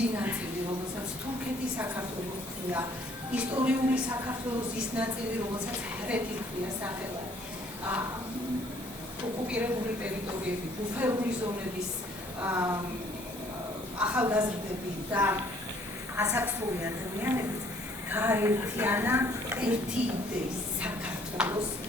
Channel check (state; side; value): normal; both; correlation 0.61